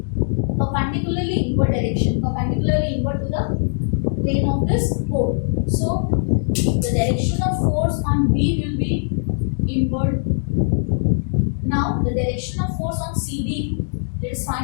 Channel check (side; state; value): right; silent; digital silence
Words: perpendicularly inward direction, perpendicularly inward to the plane of this pole. So the direction of force on B will be inward. Now the direction of force on CD, let's